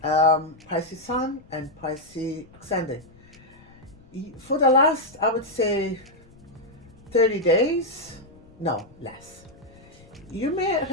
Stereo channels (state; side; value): noise; left; rumble, 25 dB below the sound